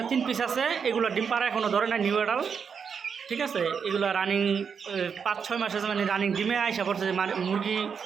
3 পিস আছে, এগুলো ডিম পাড়া এখনও ধরে না, নিউ এডাল। ঠিক আছে, এগুলো রানিং 5-6 মাস আছে, মানে রানিং ডিমে আইসা পড়ছে, যে মুরগি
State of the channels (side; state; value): left; quieter; 6.5 dB